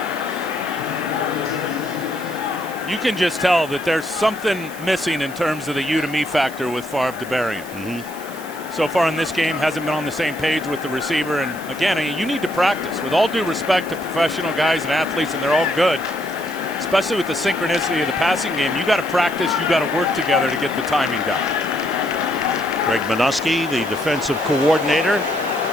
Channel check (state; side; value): noise; right; hiss, 17 dB below the sound